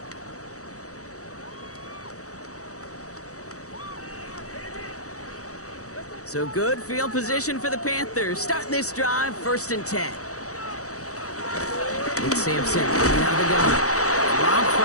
So good field position for the Panthers. Starting this drive, 1st and 10. It's Sampson coming out of the gun. Rob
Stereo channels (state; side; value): late; right; 0.65 ms